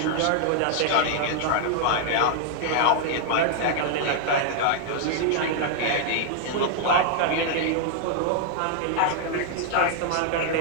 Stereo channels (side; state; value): both; different; correlation -0.01